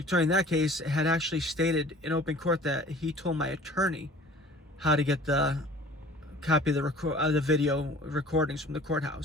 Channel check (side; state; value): both; normal; correlation 0.47